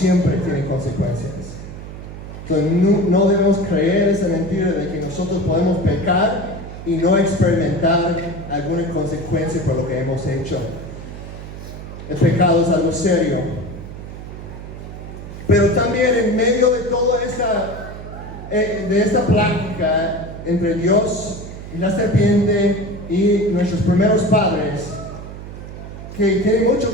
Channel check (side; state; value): right; noise; hum, 12 dB below the sound